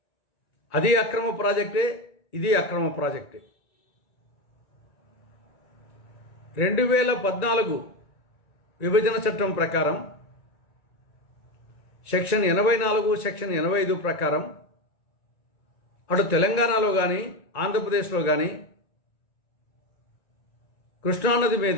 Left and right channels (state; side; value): late; right; 1.9 ms